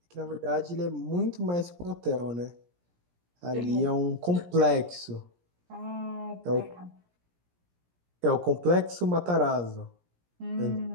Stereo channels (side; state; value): left; late; 17 ms